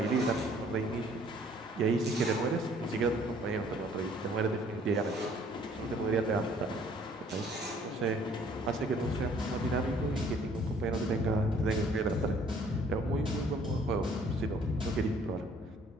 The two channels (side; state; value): both; normal; correlation 0.58